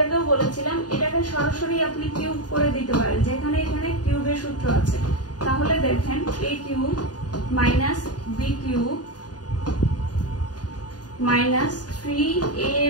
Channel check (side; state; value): right; late; 0.69 ms